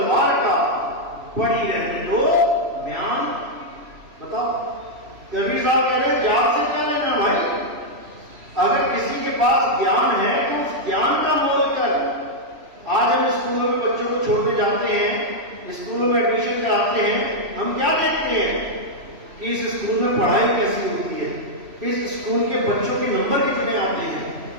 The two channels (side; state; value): left; late; 3.0 ms